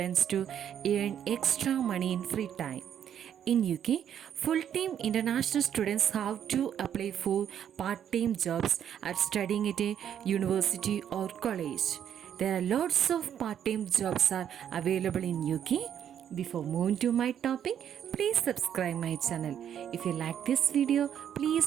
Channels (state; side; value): quieter; left; 9.4 dB